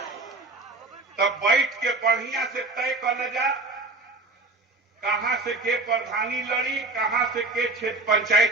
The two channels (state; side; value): quieter; left; 3.2 dB